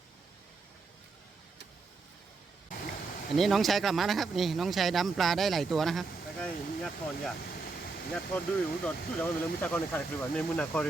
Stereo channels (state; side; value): quieter; left; 4.0 dB